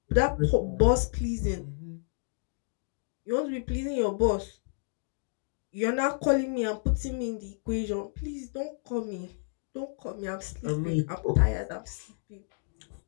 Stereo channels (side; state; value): right; silent; digital silence